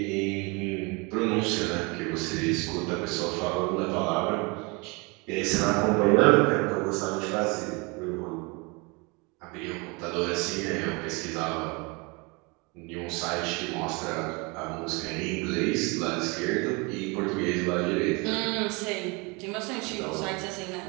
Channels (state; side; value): quieter; left; 28.5 dB